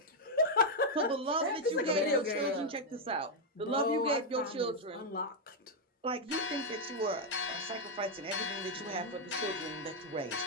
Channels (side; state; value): both; normal; correlation -0.01